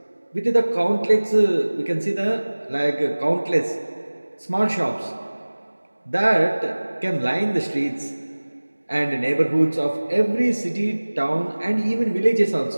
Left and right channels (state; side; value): inverted; both; correlation -1.00